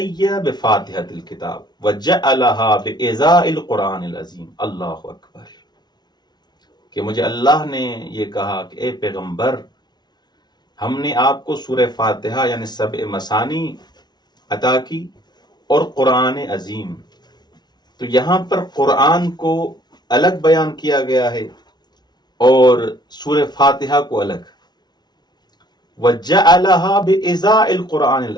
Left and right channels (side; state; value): right; late; 0.20 ms